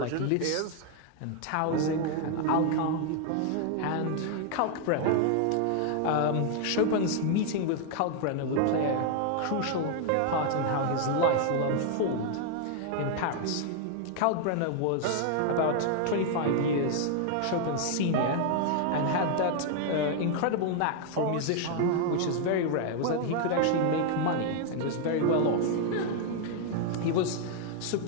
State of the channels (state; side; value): different; both; correlation 0.00